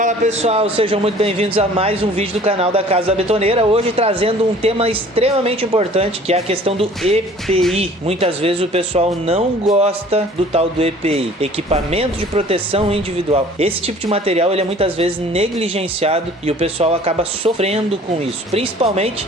pessoal, sejam muito bem-vindos a mais um vídeo do canal da Casa da Betoneira. Hoje trazendo um tema extremamente importante, que é a questão do EPI. Muitas vezes o pessoal não gosta do tal do EPI, equipamento de proteção individual. Esse tipo de material ele é muitas vezes negligenciado e o pessoal acaba sofrendo com isso. Principalmente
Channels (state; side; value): normal; both; correlation 0.50